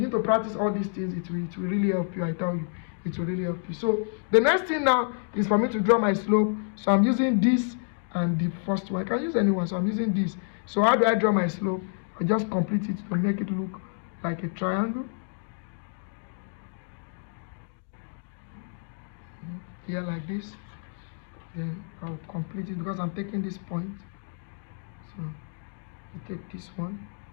to practice all these things, it will really help you. I tell you, it will really help you. So the next thing now is for me to draw my slope. So I'm using this and the first one. I can use anyone. So I'm using this. So how do I draw my slope? I just complete it to make it look like a triangle. Here like this. Then I'll complete it because I'm taking this point. So I take this one.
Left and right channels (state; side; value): silent; right; 59 dB below the other